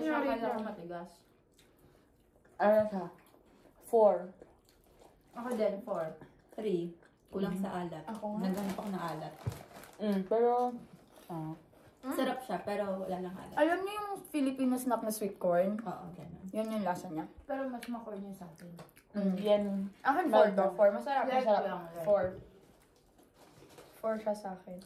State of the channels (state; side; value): identical; both; correlation 1.00